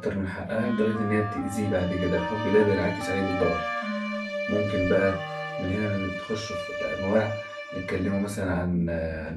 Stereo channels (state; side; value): identical; both; correlation 1.00